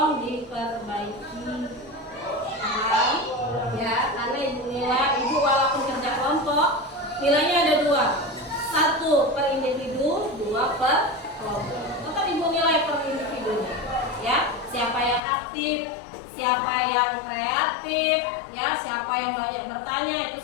diperbaiki. Paham? Ya, karena ibu walaupun kerja kelompok nilainya ada 2, 1 per individu, 2 per kelompok. Tetap ibu nilai per individunya ya, siapa yang aktif, siapa yang kreatif ya, siapa yang banyak bertanya,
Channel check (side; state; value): right; drops out; at 15.2 s